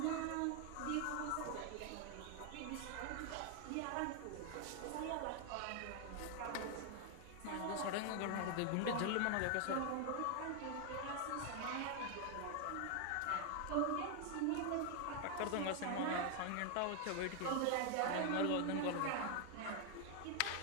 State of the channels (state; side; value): different; both; correlation 0.00